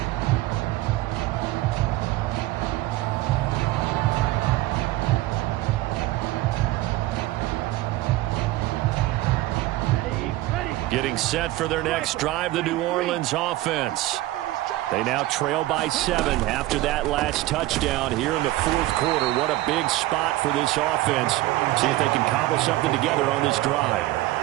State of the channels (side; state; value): left; quieter; 17.1 dB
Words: Getting set for their next drive, the New Orleans offense. They now trail by 7 after that last touchdown here in the 4th quarter. What a big spot for this offense. See if they can cobble something together on this drive.